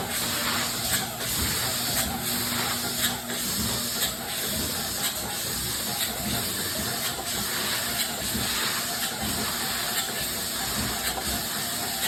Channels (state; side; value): identical; both; correlation 1.00